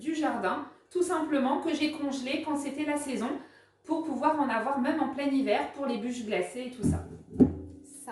jardin, tout simplement que j'ai congelées quand c'était la saison pour pouvoir en avoir même en plein hiver pour les bûches glacées et tout ça.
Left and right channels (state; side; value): identical; both; correlation 1.00